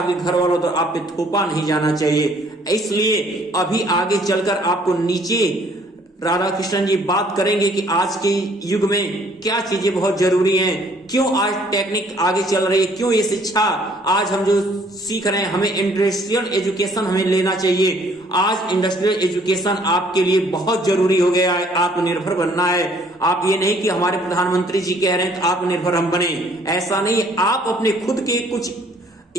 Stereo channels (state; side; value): normal; both; correlation 0.61